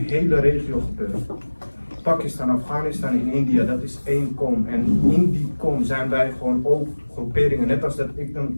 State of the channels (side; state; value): both; inverted; correlation -1.00